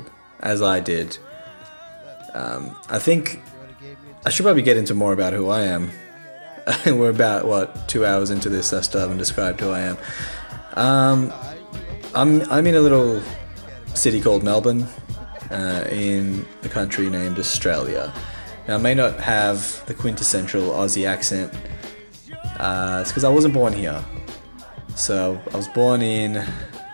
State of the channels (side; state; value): both; inverted; correlation -1.00